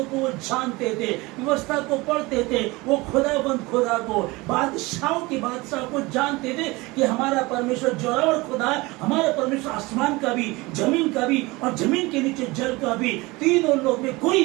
को वो जानते थे, व्यवस्था को पढ़ते थे। वो खुदा को, बादशाह को जानते थे कि हमारा परमेश्वर जोरावर खुदा है। हमारा परमेश्वर आसमान का भी, जमीन का भी और जमीन के नीचे जल का भी, तीनों लोग में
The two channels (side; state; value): left; quieter; 22.7 dB